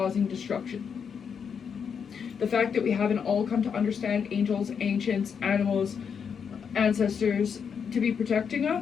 destruction. The fact that we haven't all come to understand angels, ancients, animals, ancestors to be protecting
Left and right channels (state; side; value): quieter; right; 6.8 dB